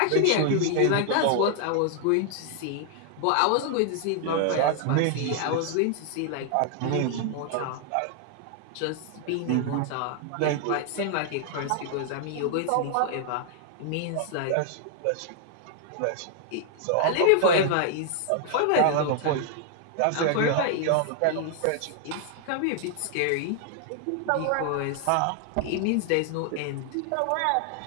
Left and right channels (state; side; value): different; both; correlation 0.00